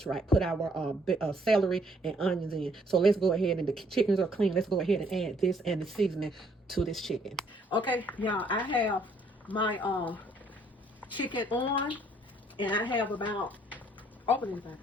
right? Put our celery and onions in. So let's go ahead, and the chickens are clean. Let's go ahead and add this and the seasoning to this chicken. Okay, y'all, I have my chicken on, and I have about, open anything.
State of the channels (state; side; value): normal; both; correlation 0.65